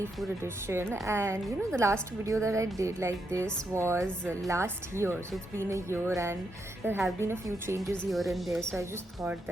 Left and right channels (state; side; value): normal; both; correlation 0.81